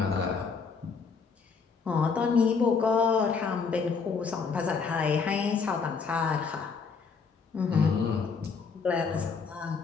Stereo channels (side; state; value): right; quieter; 5.3 dB